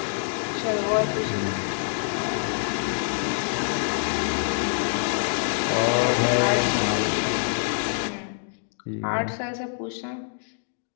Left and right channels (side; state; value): right; silent; digital silence